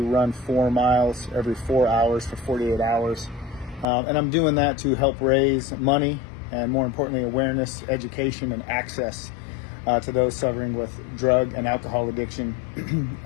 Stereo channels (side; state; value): right; drops out; at 3.9 s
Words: run 4 miles every 4 hours for 48 hours. And I'm doing that to help raise money and, more importantly, awareness, education, and access to those suffering with drug and alcohol addiction,